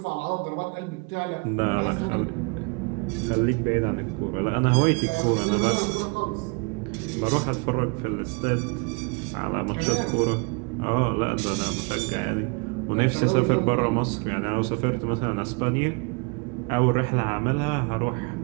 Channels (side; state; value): left; quieter; 32.2 dB